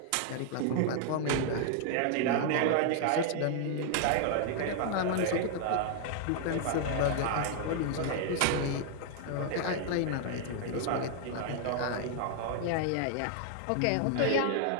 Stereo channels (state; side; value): different; both; correlation 0.00